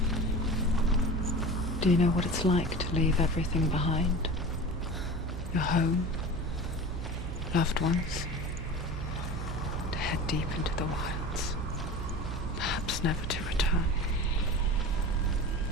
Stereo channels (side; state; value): right; noise; hum, 6 dB below the sound